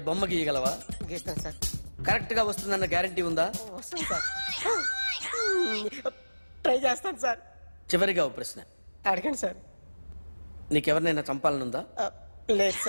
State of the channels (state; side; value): inverted; both; correlation -1.00